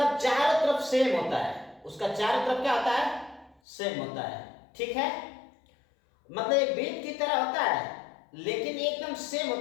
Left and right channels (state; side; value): drops out; right; at 3.6 s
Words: चारों तरफ सेम होता है, उसका चारों तरफ क्या होता है? सेम होता है। ठीक है, मतलब एक बीट की तरह होता है, लेकिन एकदम सेम